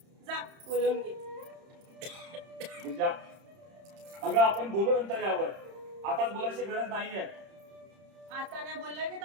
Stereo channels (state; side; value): late; left; 31 ms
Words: जा, बोलवून घे. गिरिजा, अगं आपण बोलू नंतर यावर. आताच बोलायची गरज नाहीये. आता नाही बोललं की